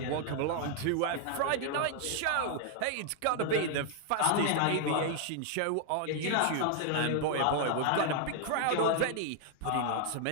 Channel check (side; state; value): both; different; correlation 0.00